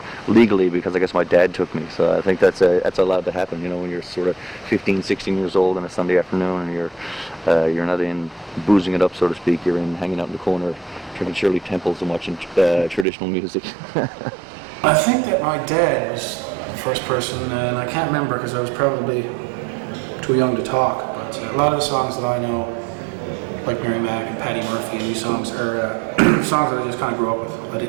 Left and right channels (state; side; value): drops out; left; at 13.1 s